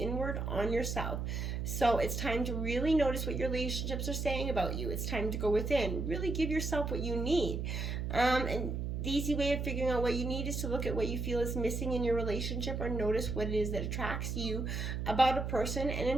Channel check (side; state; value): right; noise; hum, 2 dB below the sound